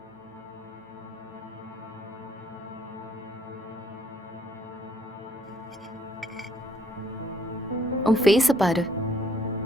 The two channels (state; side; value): normal; both; correlation 0.65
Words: உன் ஃபேஸை பாரு,